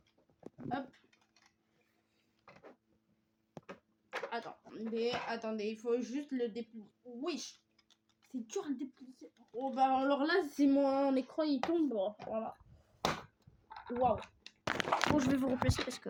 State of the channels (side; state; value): both; identical; correlation 1.00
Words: Hop. Attendez, il faut juste le déplier. Oui, c'est dur à déplier. Oh bah alors là, si mon écran il tombe, voilà. Waouh. Bon, je vais vous replacer parce que